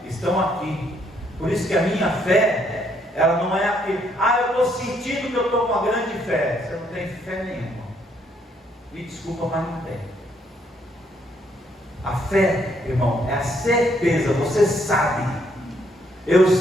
estão aqui. Por isso que a minha fé, ela não é aquele, eu estou sentindo que eu estou com uma grande fé. Você não tem fé nenhuma. Me desculpa, mas não tem. A fé, irmão, é a certeza, você sabe. Eu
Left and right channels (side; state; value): both; normal; correlation 0.71